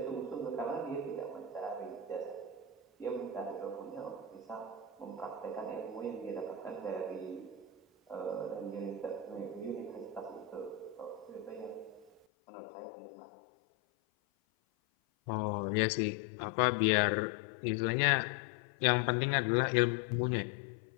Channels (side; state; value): right; drops out; at 12.2 s